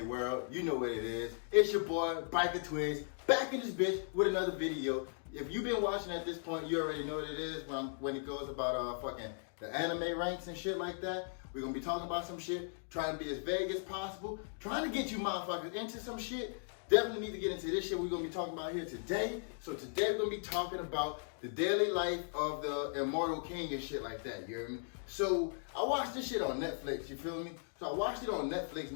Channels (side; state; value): right; silent; digital silence